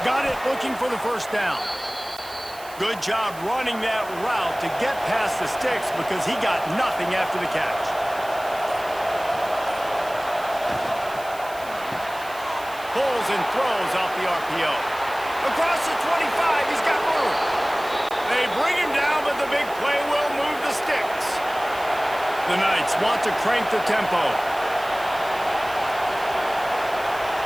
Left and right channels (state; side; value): noise; right; hiss, 18 dB below the sound